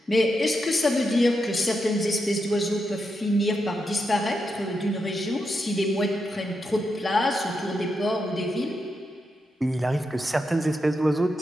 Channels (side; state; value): both; normal; correlation 0.85